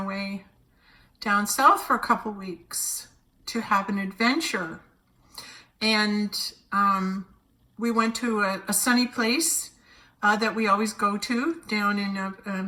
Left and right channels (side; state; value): both; identical; correlation 1.00